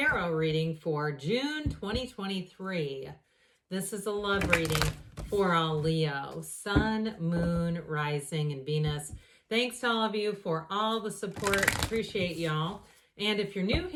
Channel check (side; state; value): both; identical; correlation 1.00